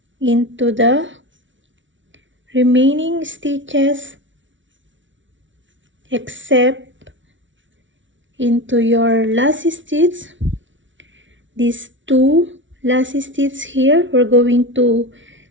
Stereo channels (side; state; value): left; late; 0.56 ms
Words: into the remaining stitches except into your last stitch. These 2 last stitches here, we're going to